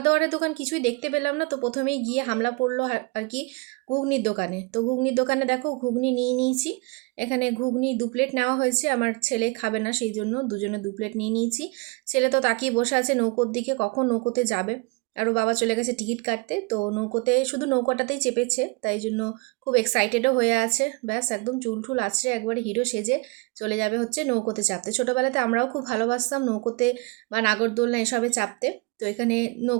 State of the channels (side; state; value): left; quieter; 26.9 dB